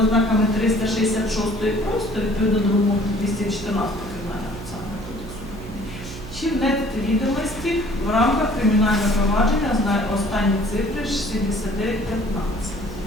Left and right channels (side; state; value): right; noise; hum, 12 dB below the sound